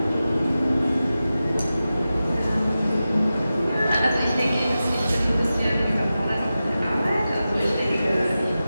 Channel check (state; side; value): inverted; both; correlation -0.93